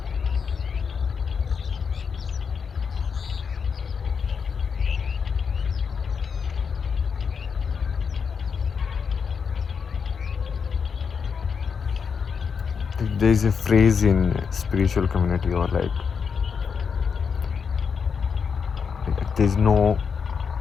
there's a phrase in spiritual community or there's no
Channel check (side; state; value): right; quieter; 6.1 dB